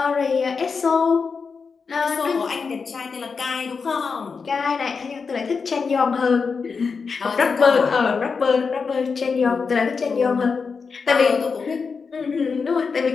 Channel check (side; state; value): right; quieter; 5.2 dB